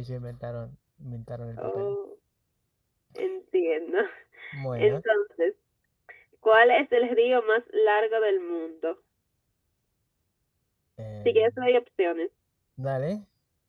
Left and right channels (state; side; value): identical; both; correlation 1.00